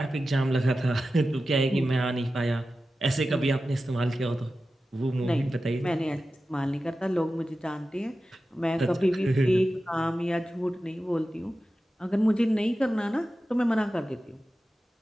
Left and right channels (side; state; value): both; normal; correlation 0.93